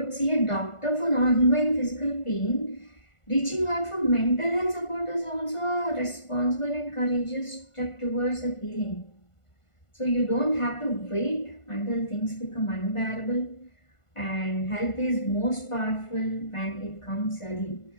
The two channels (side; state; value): right; late; 1.5 ms